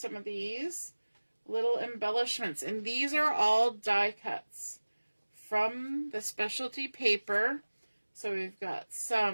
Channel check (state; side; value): inverted; both; correlation -1.00